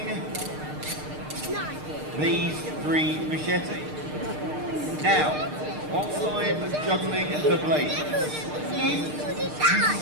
these 3 machetes. Now, whilst I'm juggling the blades, if you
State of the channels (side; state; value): left; late; 6.6 ms